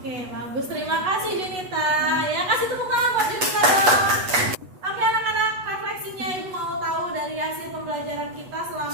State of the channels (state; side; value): late; left; 8.1 ms